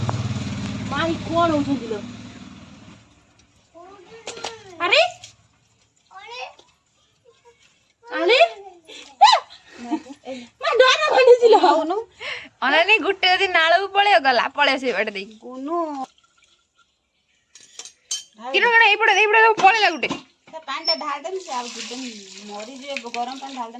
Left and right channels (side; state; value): both; identical; correlation 1.00